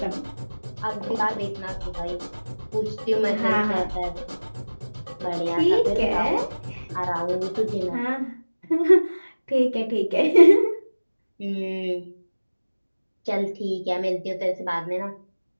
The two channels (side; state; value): both; inverted; correlation -1.00